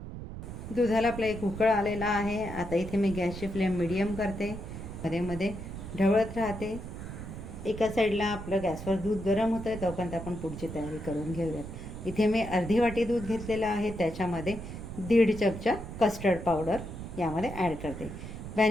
दुधाला आपला 1 उकळ आलेला आहे. आता इथे मी गॅसची फ्लेम मीडियम करते, मध्ये मध्ये ढवळत राहते. एका साईडला आपलं गॅसवर दूध गरम होतं आहे तोपर्यंत आपण पुढची तयारी करून घेऊयात. इथे मी अर्धी वाटी दूध घेतलेलं आहे. त्याच्यामध्ये 1.5 चमचा कस्टर्ड पावडर यामध्ये ॲड करते.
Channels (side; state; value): right; noise; rumble, 9 dB below the sound